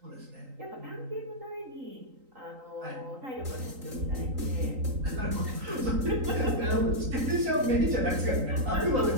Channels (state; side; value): late; left; 3.9 ms